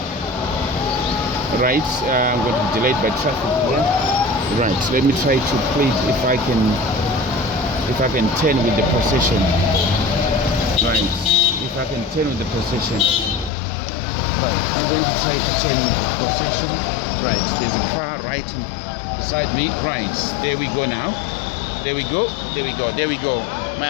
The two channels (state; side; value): drops out; right; at 13.5 s